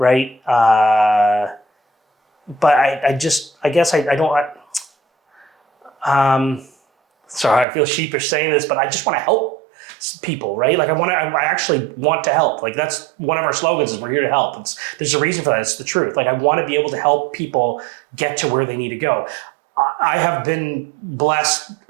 But I guess I don't, sorry, I feel sheepish saying this, but I just want to help people, right? Like I actually want to help. Like that's one of our slogans is we're here to help. There's a reason for that. It's the truth. Like I want to be able to help people get to where they need to go. I have been blessed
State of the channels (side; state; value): left; drops out; at 7.7 s